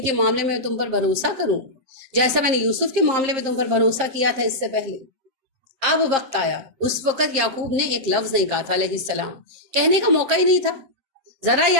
کے معاملے میں تم پر بھروسہ کروں جیسا میں نے یوسف کے معاملے میں تم پر بھروسہ کیا تھا اس سے پہلے۔ اب وقت آیا، اس وقت یعقوب نے ایک لفظ نہیں کہا تھا علیہ السلام، کہنے کا موقع ہی نہیں تھا، ذرا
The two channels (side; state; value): left; late; 7.6 ms